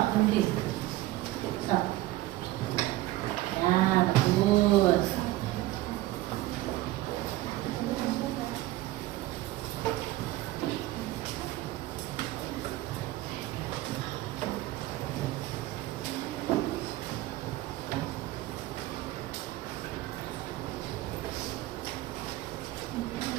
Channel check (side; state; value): left; quieter; 16.8 dB